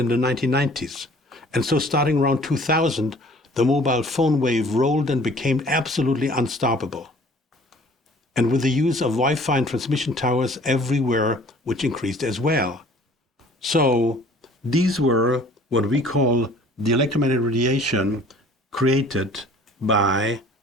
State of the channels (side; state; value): both; normal; correlation 0.51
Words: the 1990s. And so starting around 2000, the mobile phone wave rolled and became absolutely unstoppable. And with the use of Wi-Fi and transmission towers everywhere, which increased as well. So these were what we call the electromagnetic radiation created by